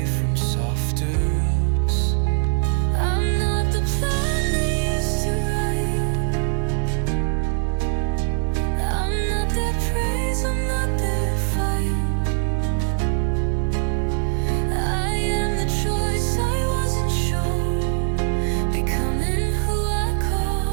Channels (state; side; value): silent; left; 64 dB below the other